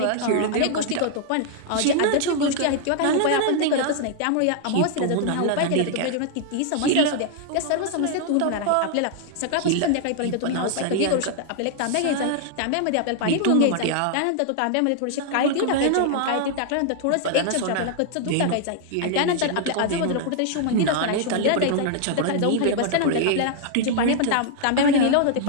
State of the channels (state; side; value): different; both; correlation 0.00